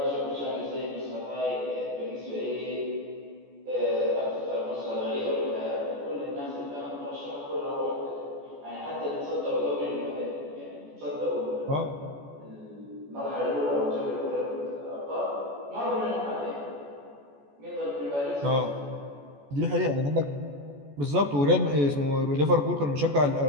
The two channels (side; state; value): left; late; 14 ms